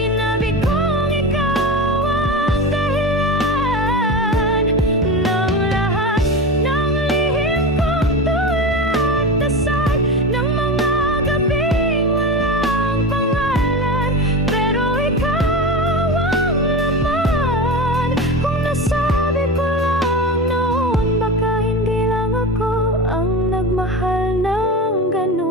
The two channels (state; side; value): normal; both; correlation 0.25